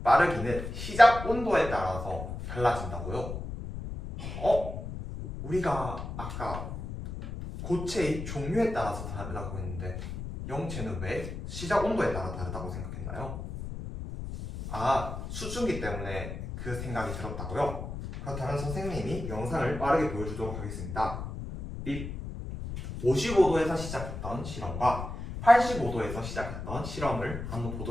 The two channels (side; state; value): left; noise; rumble, 7 dB below the sound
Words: 빠르기는 시작 온도에 따라서 달라진다고요? 우리가 아까 고체의 종류에 따라서 다르다고 했는데 영체는 왜 시작 온도에 따라 다르다고 생각했나요? 수증기 때문에 그 생각이 들었다고요? 그렇다면 선생님이 영상을 빠르게 보여주도록 하겠습니다. 55도에서 시작했던 실험과 85도에서 시작했던 실험을 한번